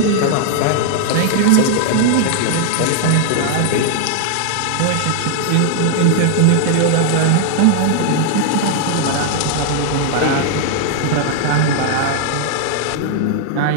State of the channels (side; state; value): both; different; correlation 0.00